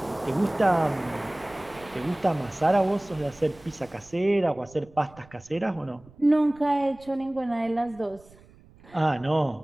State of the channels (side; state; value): right; noise; rumble, 25 dB below the sound